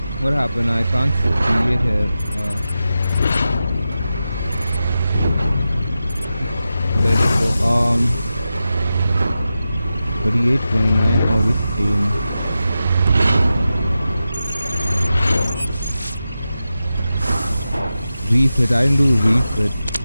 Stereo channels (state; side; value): inverted; both; correlation -0.92